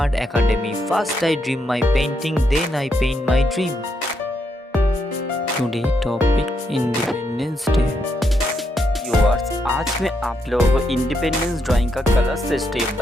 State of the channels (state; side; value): normal; both; correlation 0.79